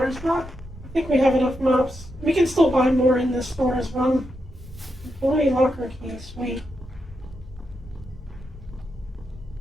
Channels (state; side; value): normal; both; correlation 0.84